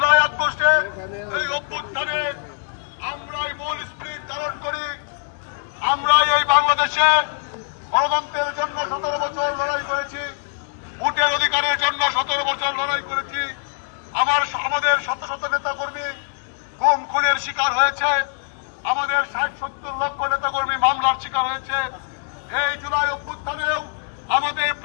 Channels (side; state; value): right; silent; 64 dB below the other